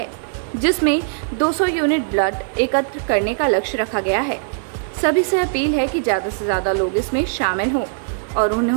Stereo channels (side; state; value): left; silent; digital silence